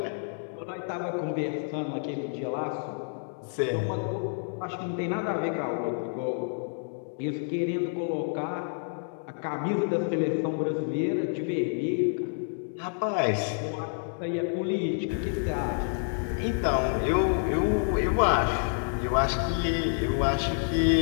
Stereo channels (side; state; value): right; silent; digital silence